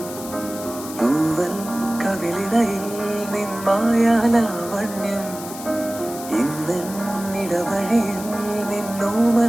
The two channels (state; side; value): noise; left; hiss, 13 dB below the sound